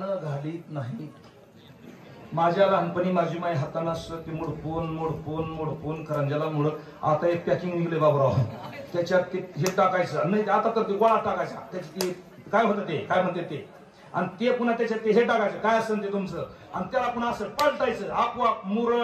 घालीत नाही. माझ्या लहानपणी माझी माई हातानं असं ते मोडपून करंज्याला मुरड. आता एक पॅकिंग निघले बाबूराव, त्याच्यात ते हे टाकायचं नाही, आता तर ते गोळा टाकायचा. त्याच्यात ते काय होतं, ते काय म्हणते ते, आणि ते पुन्हा त्याच्यात ते हे टाकायचं काय असेल ते तुमचं, आणि त्याला पुन्हा असं पलटायचं. आपोआप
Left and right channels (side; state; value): both; identical; correlation 1.00